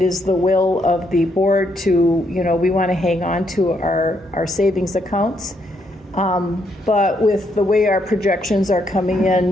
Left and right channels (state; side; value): normal; both; correlation 0.75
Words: is the will of the board to, we want to hang on to our savings accounts. But with the way our projections are coming